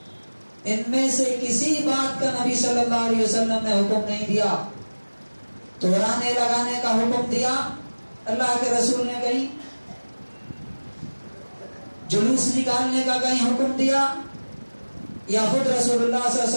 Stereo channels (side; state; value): both; inverted; correlation -1.00